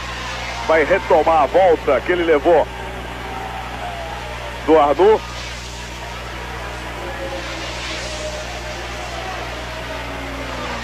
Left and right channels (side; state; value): both; identical; correlation 1.00